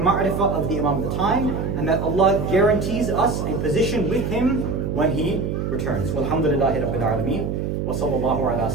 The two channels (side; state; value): right; noise; hum, 2 dB below the sound